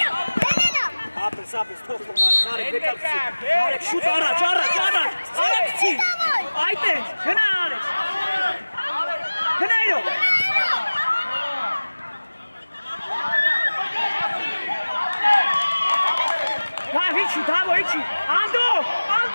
Apres, top Narek vekal. Narek şut araç. Araç çi. Ayten, gına Alex. Gına yok. Davo, içi. Ando.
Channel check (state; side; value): inverted; both; correlation -1.00